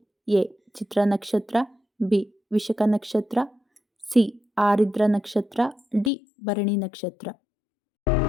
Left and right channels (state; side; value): drops out; right; at 6.1 s